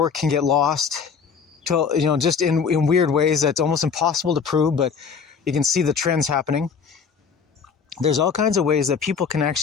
can get lost. to, just in weird ways that's almost impossible to prove, but you can see the trends happening. There's all kinds of ways that people can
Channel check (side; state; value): right; quieter; 6.1 dB